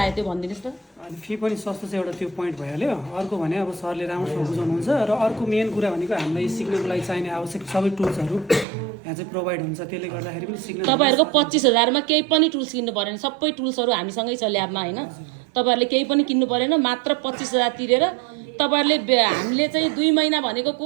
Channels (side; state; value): left; drops out; at 8.7 s